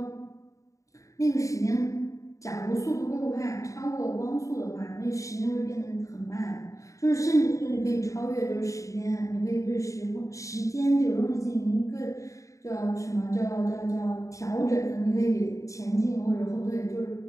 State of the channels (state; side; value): late; right; 0.16 ms